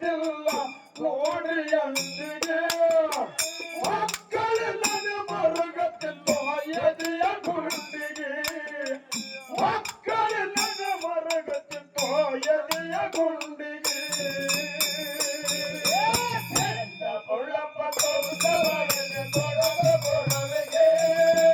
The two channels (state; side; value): identical; both; correlation 1.00